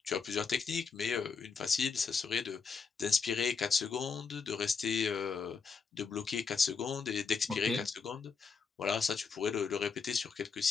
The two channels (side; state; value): right; quieter; 5.3 dB